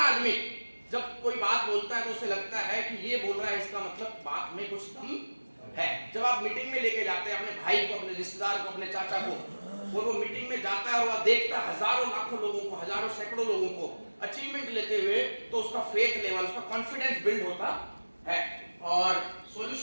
आदमी जब कोई बात बोलता है तो उसे लगता है कि ये बोल रहा है, इसका मतलब बात में कुछ दम है। जब आप मीटिंग में लेके जाते हैं अपने भाई को, अपने रिश्तेदार को, अपने चाचा को, और वो मीटिंग में जाता है और वह देखता है हजारों लाखों लोगों को, हजारों सैकड़ों लोगों को अचीवमेंट लेते हुए, तो उसका फेथ लेवल, उसका कॉन्फिडेंस बिल्ड होता है। और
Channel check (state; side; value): inverted; both; correlation -1.00